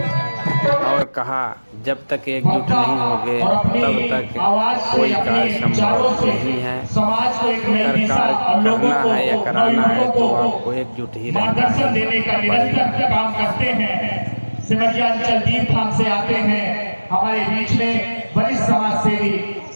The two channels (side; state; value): both; inverted; correlation -1.00